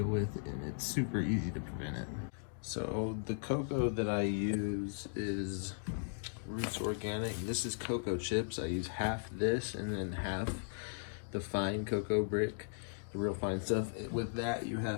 with, and it's super easy to prevent it. So the cocoa that I use is Roots Organic. This is cocoa chips. I use half this and then half the fine cocoa brick, the real fine stuff. With that, you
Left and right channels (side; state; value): right; silent; digital silence